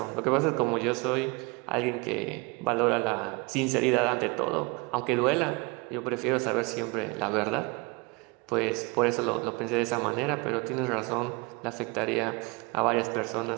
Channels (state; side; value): quieter; left; 27.8 dB